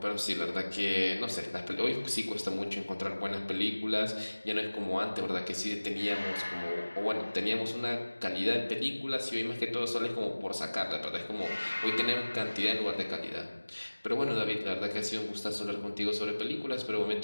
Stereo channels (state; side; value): inverted; both; correlation -1.00